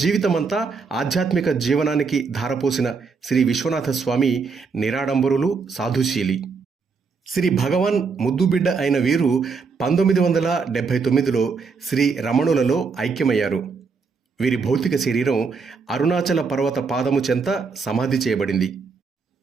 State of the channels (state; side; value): quieter; left; 5.0 dB